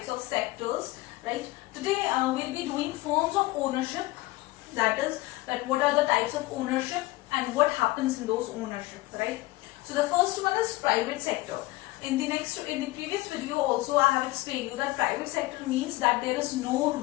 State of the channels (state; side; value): quieter; right; 20.0 dB